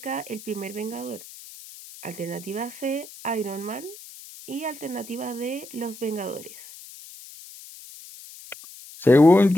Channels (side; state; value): left; noise; hiss, 17 dB below the sound